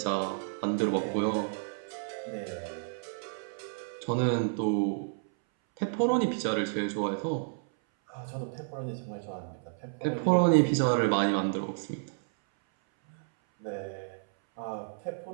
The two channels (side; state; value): left; silent; 57 dB below the other